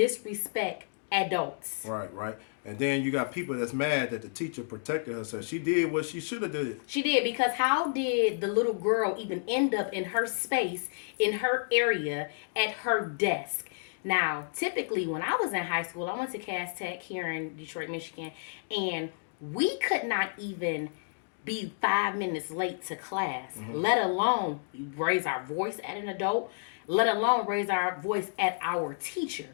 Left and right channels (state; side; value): silent; right; digital silence